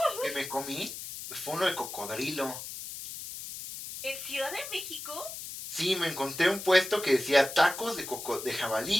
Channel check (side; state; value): left; noise; hiss, 9 dB below the sound